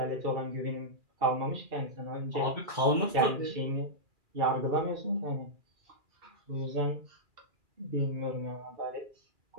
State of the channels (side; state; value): left; late; 2.3 ms